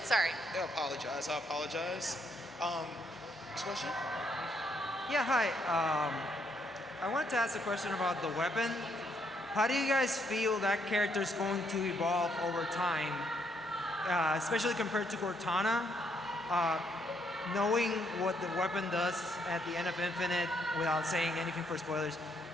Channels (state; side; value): normal; both; correlation 0.73